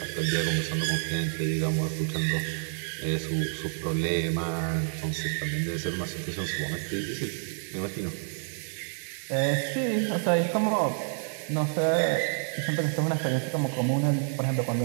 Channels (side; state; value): left; silent; 59 dB below the other